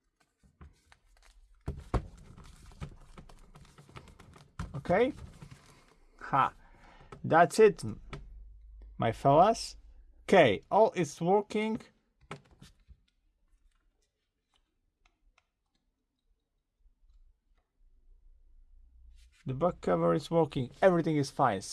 Okay, that's it, my fellas. Okay, all is working. The back cover is working, everything is fine.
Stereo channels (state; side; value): identical; both; correlation 1.00